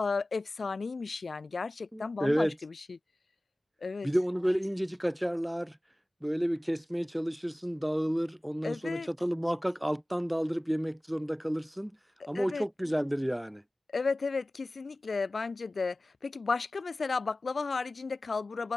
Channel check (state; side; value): normal; both; correlation 0.97